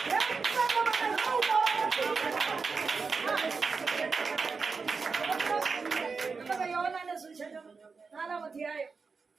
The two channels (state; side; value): quieter; left; 4.8 dB